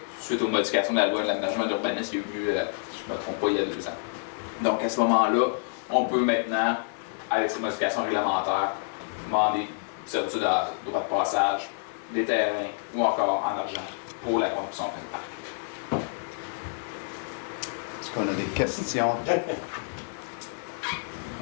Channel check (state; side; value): silent; right; digital silence